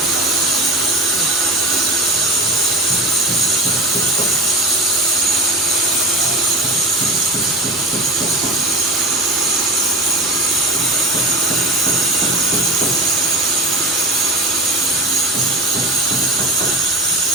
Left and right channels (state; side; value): normal; both; correlation 0.30